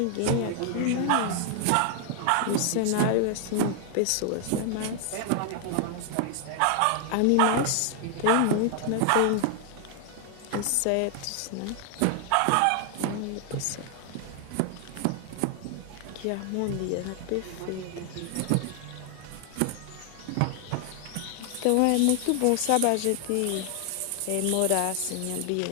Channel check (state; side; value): different; both; correlation 0.00